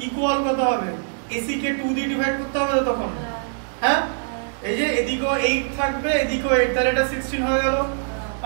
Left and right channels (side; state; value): left; silent; digital silence